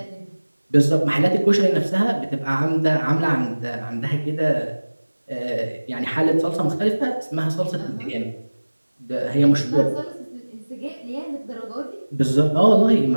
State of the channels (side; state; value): both; inverted; correlation -1.00